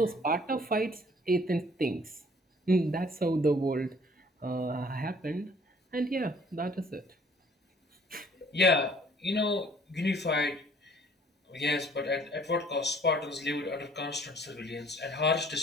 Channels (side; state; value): both; normal; correlation 0.57